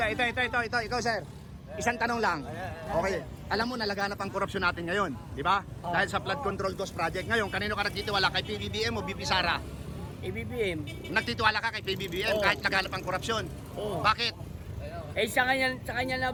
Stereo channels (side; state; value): both; identical; correlation 1.00